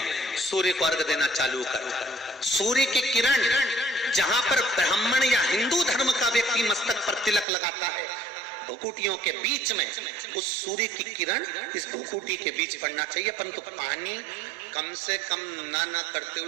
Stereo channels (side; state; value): left; drops out; at 7.5 s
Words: सूर्य को अर्घ देना चालू कर। सूर्य की किरण जहां पर ब्राह्मण या हिंदू धर्म का व्यक्ति मस्तक पर तिलक लगाता है, भुकुटियों के बीच में उस सूर्य की किरण इस भुकुटी के बीच पड़ना चाहिए, परंतु पानी कम से कम ना करते